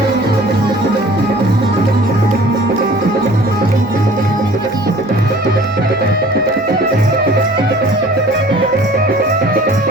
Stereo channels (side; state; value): both; normal; correlation 0.49